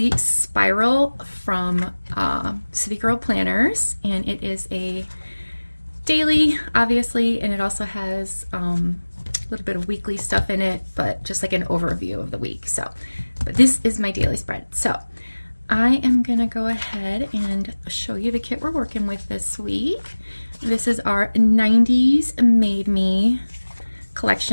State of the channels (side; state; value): both; inverted; correlation -1.00